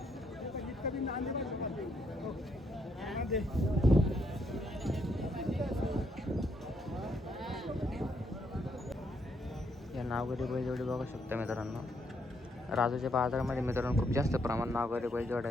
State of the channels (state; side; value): normal; both; correlation 0.74